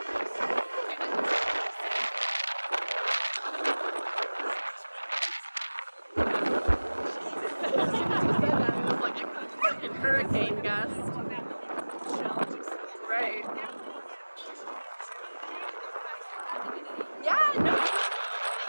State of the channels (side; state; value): both; inverted; correlation -1.00